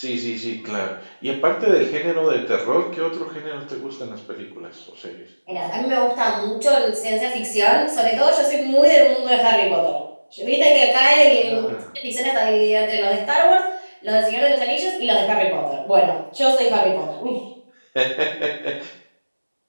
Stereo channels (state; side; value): inverted; both; correlation -1.00